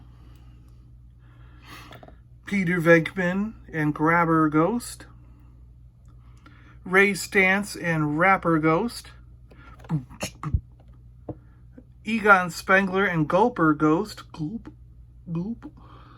Peter Venkman and Grabber Ghost. Ray Stantz and Rapper Ghost. Egon Spengler and Gulper Ghost. Gulp, gulp.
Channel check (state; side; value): identical; both; correlation 1.00